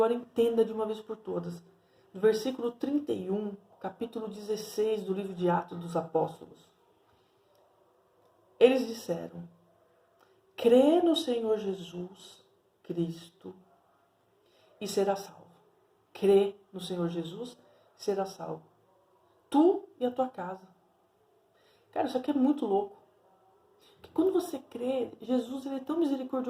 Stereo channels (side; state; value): both; identical; correlation 1.00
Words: entenda de uma vez por todas. No versículo 31, capítulo 16 do livro de Atos dos Apóstolos. Eles disseram, crê no Senhor Jesus Cristo e será salvo. Crê no Senhor Jesus e será salvo. Tu e a tua casa. Cara, isso aqui é muito louco. Porque quando você crê, Jesus, ele é tão